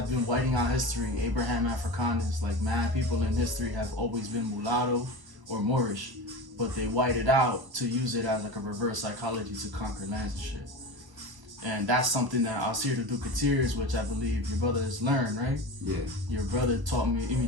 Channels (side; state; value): left; late; 1.0 ms